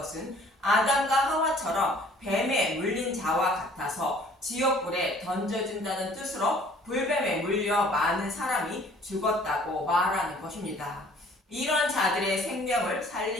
아담과 하와처럼 뱀에 물린 자와 같아서 지옥불에 던져진다는 뜻으로 불뱀에 물려 많은 사람이 죽었다고 말하는 것입니다. 이런 자들의 생명을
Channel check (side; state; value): both; normal; correlation 0.55